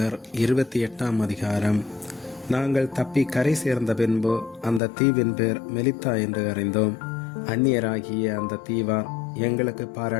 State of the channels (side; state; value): right; drops out; at 4.8 s